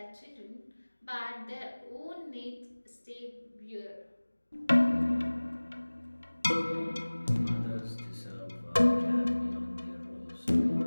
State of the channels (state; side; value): inverted; both; correlation -1.00